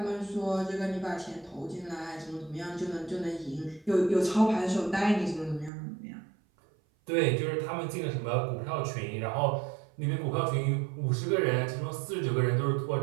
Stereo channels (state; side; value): drops out; left; at 5.7 s